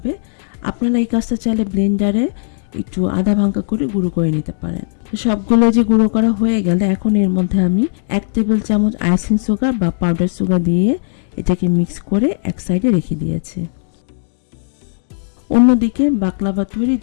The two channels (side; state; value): right; silent; digital silence